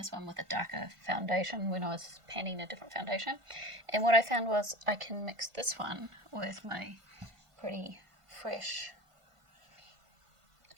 one with a darker foundation when I was panning a different foundation. And what I found was I can mix this one with my pretty fresh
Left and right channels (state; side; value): late; left; 1.5 ms